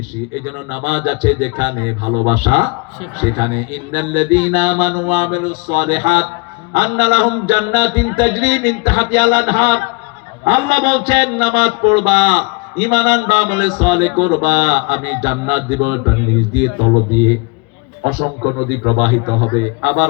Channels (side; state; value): right; quieter; 29.3 dB